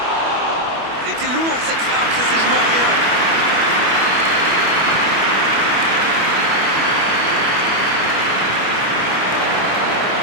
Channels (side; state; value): left; late; 25 ms